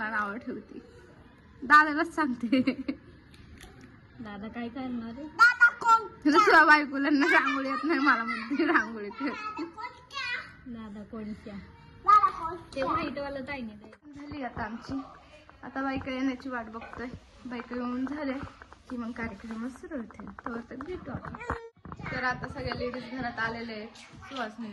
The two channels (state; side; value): identical; both; correlation 1.00